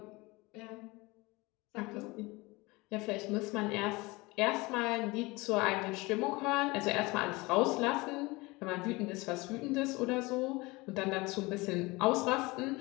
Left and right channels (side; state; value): right; quieter; 23.3 dB